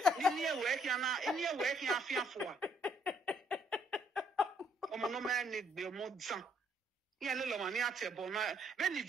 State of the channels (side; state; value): both; normal; correlation 0.68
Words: near work, you fear for. Oh, no man need be more son. Yeah, little money at your bona. When the